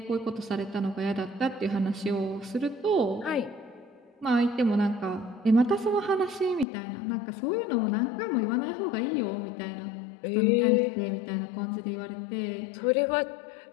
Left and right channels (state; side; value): drops out; right; at 6.7 s